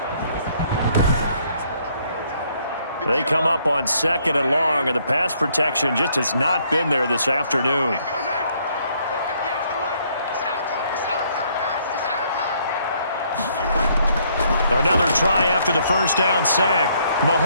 They come up on 2nd and long, and the pass protection just has not been there this afternoon. Another try after the first down sack.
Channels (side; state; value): both; inverted; correlation -0.67